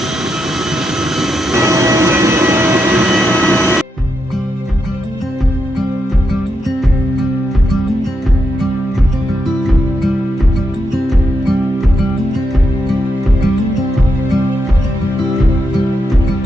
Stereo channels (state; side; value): normal; both; correlation 0.83